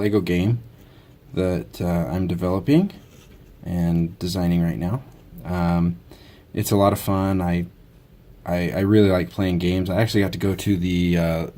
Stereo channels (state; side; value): identical; both; correlation 1.00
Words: game that I'm developing and designing right now. It's a lot of fun. I really like playing games. I actually got to go to the